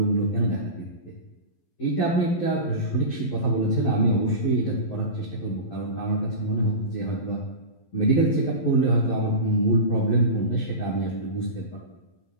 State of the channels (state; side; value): late; right; 11 ms